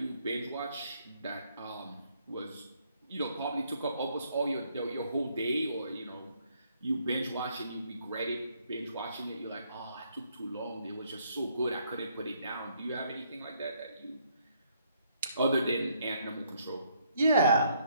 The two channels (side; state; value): both; inverted; correlation -0.69